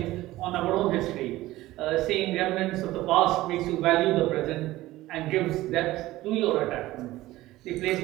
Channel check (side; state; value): left; quieter; 17.0 dB